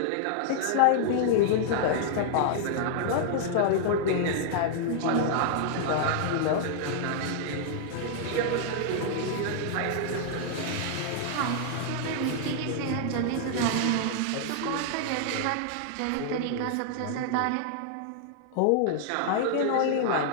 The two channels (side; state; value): both; different; correlation -0.01